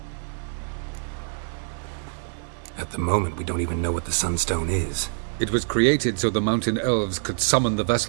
At the moment, we don't even know what the Sunstone is. It was created so the mountain elves could summon the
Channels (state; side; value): silent; left; 62 dB below the other